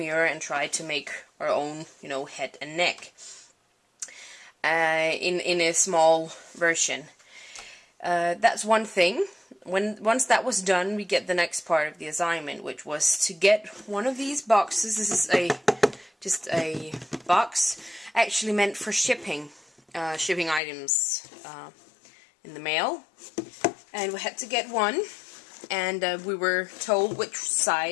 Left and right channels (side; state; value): right; drops out; at 20.6 s